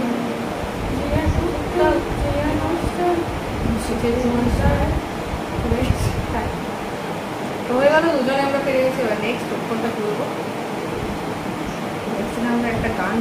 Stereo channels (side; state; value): both; identical; correlation 1.00